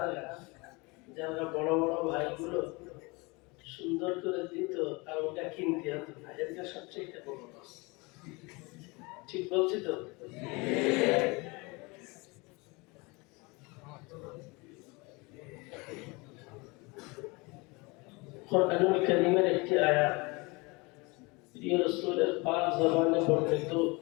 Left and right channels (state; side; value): quieter; right; 26.4 dB